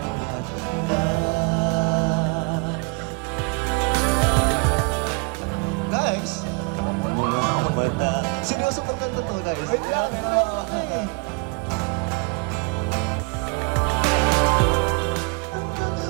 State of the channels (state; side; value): quieter; left; 32.1 dB